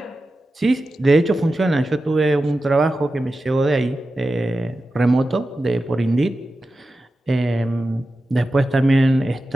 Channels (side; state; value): both; normal; correlation 0.93